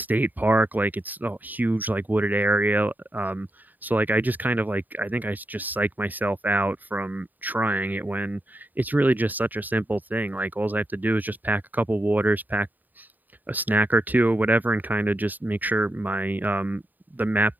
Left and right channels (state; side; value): late; left; 0.086 ms